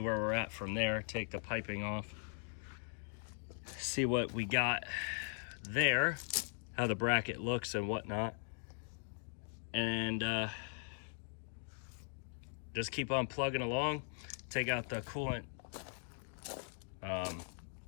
we're at from there, take the piping off, see what we got there, how the bracket looks and whatnot, and just keep on plugging along. Take out the coolant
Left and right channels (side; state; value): right; silent; 51 dB below the other